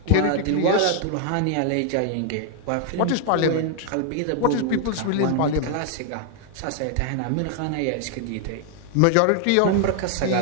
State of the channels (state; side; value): different; both; correlation 0.00